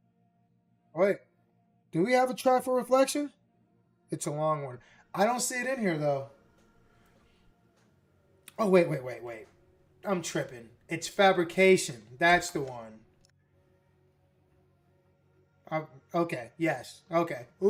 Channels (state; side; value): identical; both; correlation 1.00